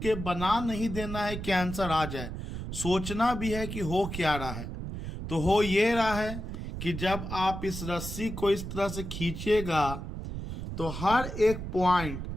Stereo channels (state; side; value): noise; right; rumble, 7 dB below the sound